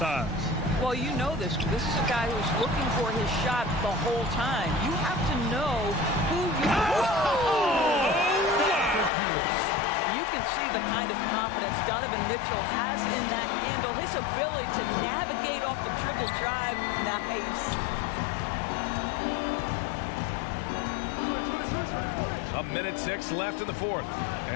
Well, you know this. This is a guy who's looking for his shot the whole time. You have to know who you You can see the kind of confidence Donovan Mitchell has in that handle. His ability to navigate off the dribble drive. Nice. A minute 6 left in the 4th.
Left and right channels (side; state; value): right; drops out; at 9.1 s